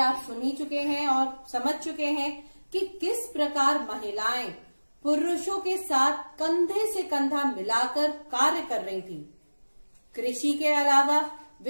सुन ही चुके हैं और समझ चुके हैं कि किस प्रकार महिलाएं पुरुषों के साथ कंधे से कंधा मिलाकर कार्य कर रही थी। कृषि के अलावा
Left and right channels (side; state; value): both; inverted; correlation -1.00